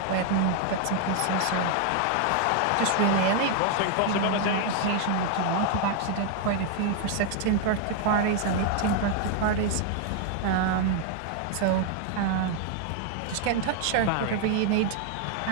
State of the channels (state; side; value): different; both; correlation 0.00